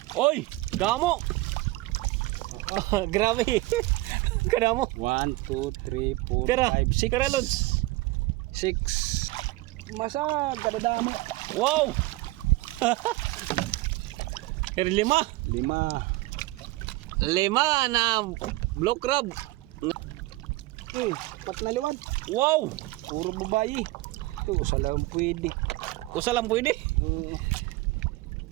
Oy, damo. Grabe. Kadamo. 1, 2, 3, 4, Tira, 5, 6. tira Lods. 6. Masag, kadadamo. Wow. Pero 5. 5. 5 na blue crab. Okay, 4 na liwat. Wow. Puro babayi. Ito, sa lang pwede. Kusa lang pwede.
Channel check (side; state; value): left; quieter; 20.1 dB